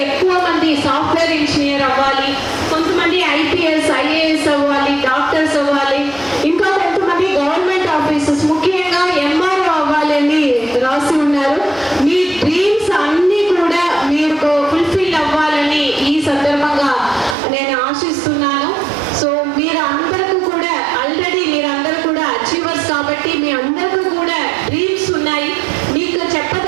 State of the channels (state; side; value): drops out; left; at 17.4 s